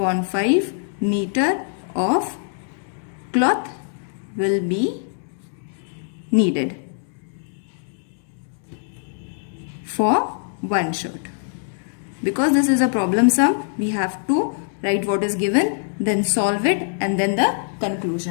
5 meter of cloth will be needed for one shirt. Because this is a problem sum, we have to write what is given, then solve it and then the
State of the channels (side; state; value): right; silent; digital silence